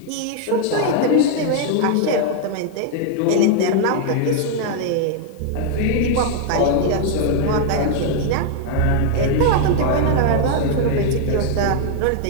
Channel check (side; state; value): both; different; correlation 0.00